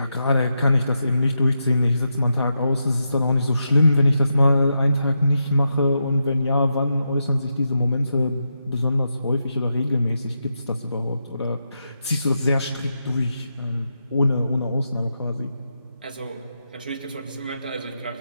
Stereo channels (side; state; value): both; inverted; correlation -0.85